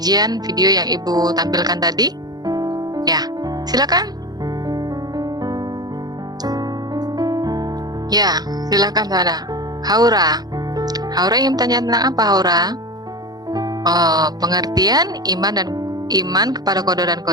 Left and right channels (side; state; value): left; late; 0.19 ms